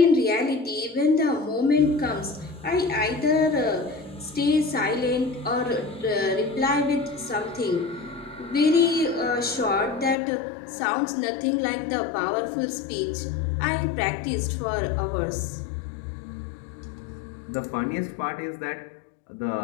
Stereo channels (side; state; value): right; drops out; at 10.2 s